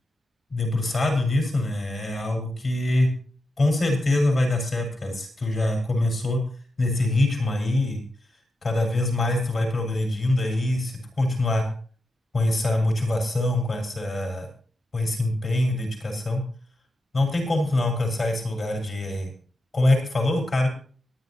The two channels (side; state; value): both; normal; correlation 0.87